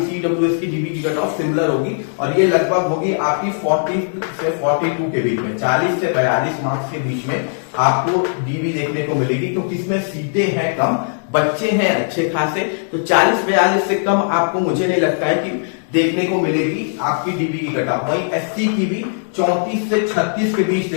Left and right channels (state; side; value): silent; right; digital silence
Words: ईडब्ल्यूएस की डीबी की कट ऑफ सिमिलर होगी और ये लगभग होगी आपकी 40 से 42 के बीच में, 40 से 42 मार्क्स के बीच में आपको डीबी देखने को मिलेगी, क्योंकि इसमें सीटें हैं कम, बच्चे हैं अच्छे खासे। तो 40-42 से कम आपको मुझे नहीं लगता है कि देखने को मिलेगी आपकी डीबी की कट ऑफ। वहीं एससी की भी 34 से 36 के बीच